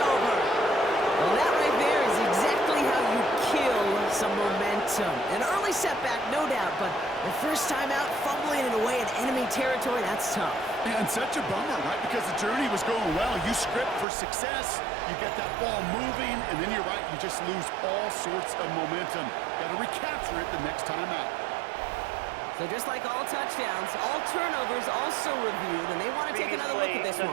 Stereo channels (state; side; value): drops out; left; at 14.1 s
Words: Well, that right there is exactly how you kill some momentum. An early setback, no doubt, but the first time out, fumbling it away in enemy territory, that's tough. And such a bummer, right? Because the journey was going well. You script for success, you get that ball moving, and then you're right, you just lose all sorts of momentum. Got to recapture it the next time out. So just like all touchdowns, all turnovers also reviewed, and they want to take another look at this